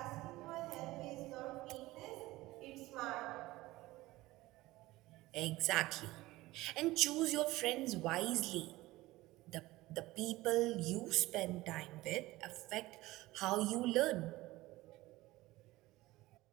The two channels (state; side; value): quieter; left; 18.5 dB